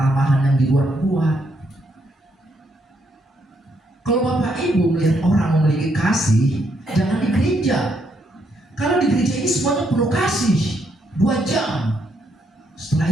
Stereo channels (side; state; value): both; normal; correlation 0.75